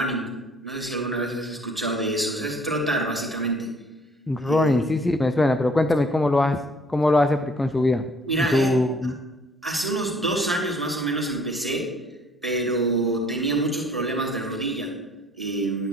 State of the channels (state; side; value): normal; both; correlation 0.58